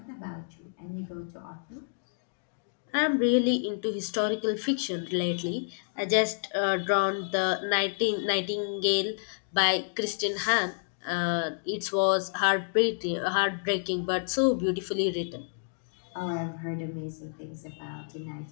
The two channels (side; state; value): right; silent; digital silence